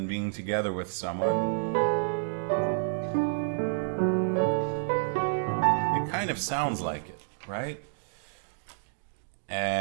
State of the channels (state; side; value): silent; left; digital silence